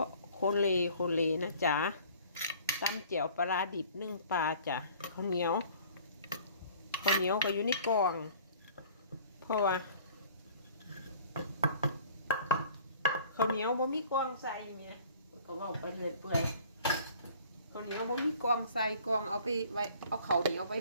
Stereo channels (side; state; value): both; inverted; correlation -0.51